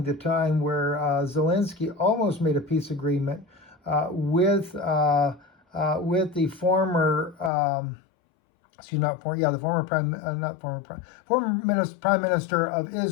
the time where Zelensky almost made a peace agreement with the former, Prime Minister of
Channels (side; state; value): right; drops out; at 7.5 s